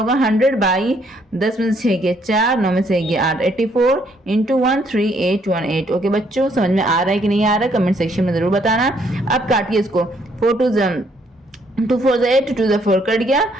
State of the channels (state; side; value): normal; both; correlation 0.69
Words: 100/10 में से 6 गए 4, 9 में से 1 8, 84 इंटू 13818, ओके बच्चों। समझ में आ रहा है कि नहीं आ रहा है, कमेंट सेक्शन में जरूर बताना। अब काटिए इसको, 4 2 2 4 से 8, 2 से 4 कट गया,